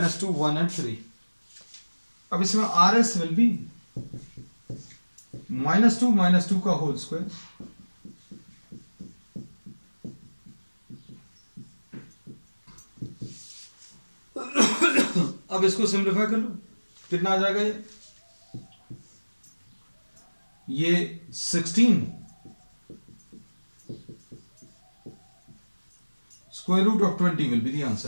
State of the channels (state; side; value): inverted; both; correlation -1.00